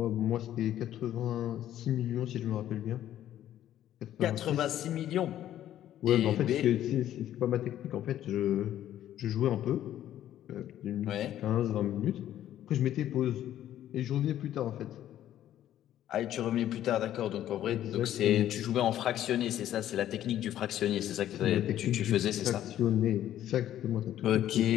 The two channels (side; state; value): right; quieter; 12.0 dB